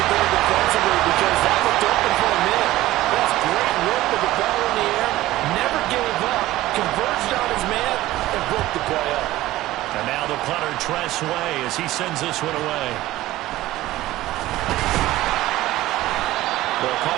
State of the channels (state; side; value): quieter; left; 16.3 dB